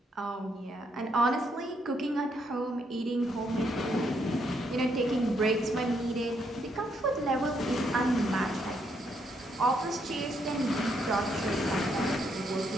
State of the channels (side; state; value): both; normal; correlation 0.75